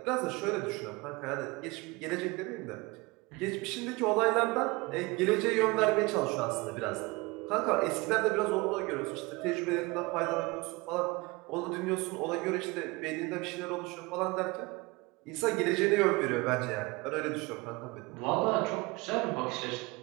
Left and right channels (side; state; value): left; quieter; 24.1 dB